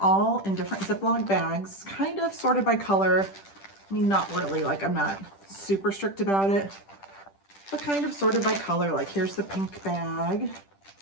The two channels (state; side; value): late; right; 10 ms